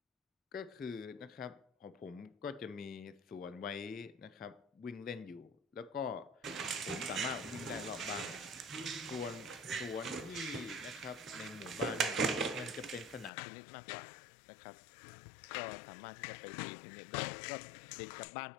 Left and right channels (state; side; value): drops out; right; at 13.3 s